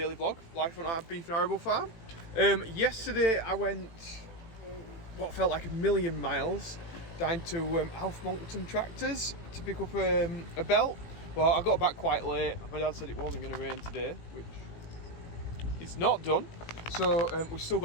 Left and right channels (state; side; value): late; right; 18 ms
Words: vlog, life on our beef and arable farm. Yesterday I went what felt like a million miles down to Alf Monkton Tractors to pick up a belt. Well, I got back quite late. My dad said it wasn't going to rain today, which it's not done. So we've still